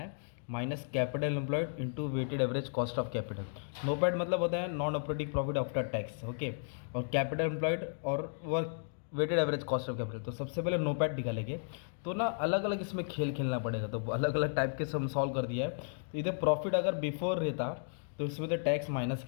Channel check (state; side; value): silent; right; digital silence